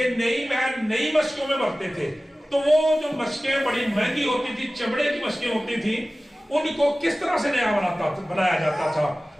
نئی محل نئی مشکوں میں بھرتے تھے، تو وہ جو مشکیں بڑی مہنگی ہوتی تھی، چمڑے کی مشکیں ہوتی تھی، ان کو کس طرح سے نیا بنایا جاتا تھا۔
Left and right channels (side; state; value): both; normal; correlation 0.97